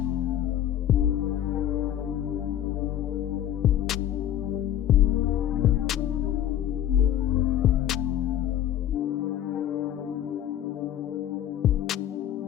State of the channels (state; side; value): quieter; right; 11.3 dB